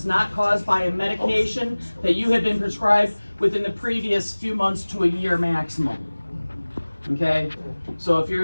not caused by a medication that you have been prescribed within the previous few months to a year maximum. Okay? So if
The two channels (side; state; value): both; inverted; correlation -1.00